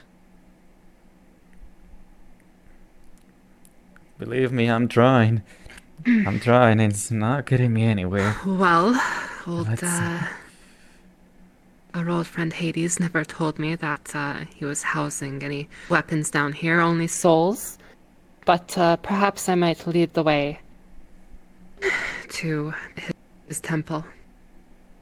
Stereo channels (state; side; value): identical; both; correlation 1.00